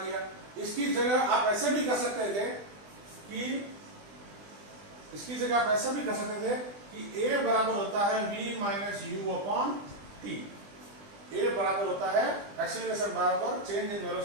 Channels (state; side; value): late; left; 20 ms